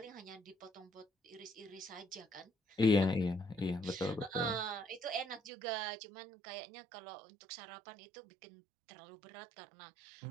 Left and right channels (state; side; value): drops out; left; at 5.5 s